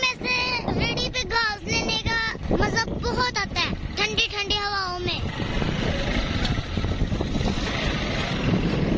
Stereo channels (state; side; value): identical; both; correlation 1.00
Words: से रेडी पे घास लेने का मजा बहुत आता है ठंडी ठंडी हवाओं में।